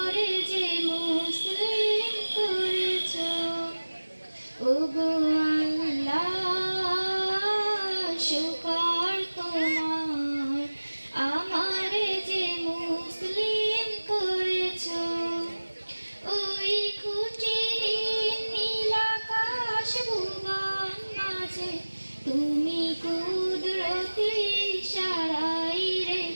যে মুসলিম করেছো। ওগো আল্লাহ শুকর তোমার, আমারে যে মুসলিম করেছো। ওই খুঁটিহীন নীল আকাশ ভুবন মাঝে তুমি কুদরতি ইশারায়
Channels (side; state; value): both; inverted; correlation -1.00